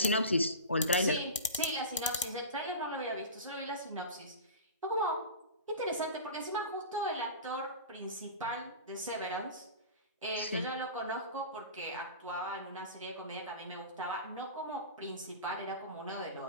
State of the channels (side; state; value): both; inverted; correlation -0.31